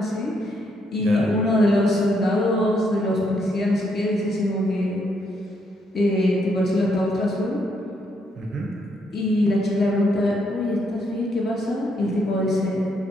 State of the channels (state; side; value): normal; both; correlation 0.75